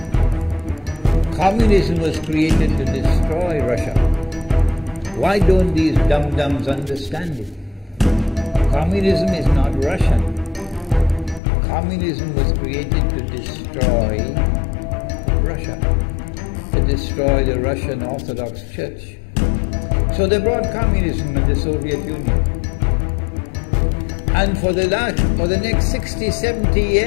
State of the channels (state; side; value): drops out; right; at 11.4 s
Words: Communism was created to destroy Russia. Why don't these dum-dums understand it? Communism is not Russian. Communism was created to destroy Russia, to destroy the Russian Orthodox Church. So they brought communism in the Soviet Union. And for the next 60, 70